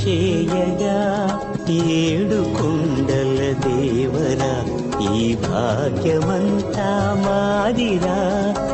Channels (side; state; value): both; identical; correlation 1.00